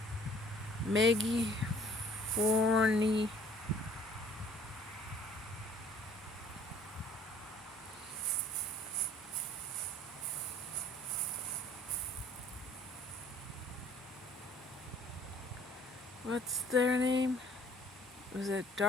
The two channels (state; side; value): normal; both; correlation 0.56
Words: Maggie Forney. What's their name? Was it